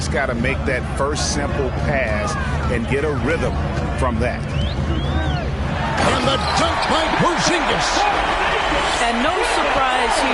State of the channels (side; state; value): both; identical; correlation 1.00